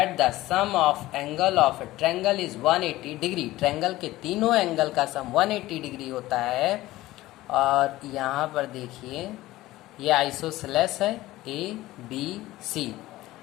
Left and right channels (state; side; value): quieter; right; 17.0 dB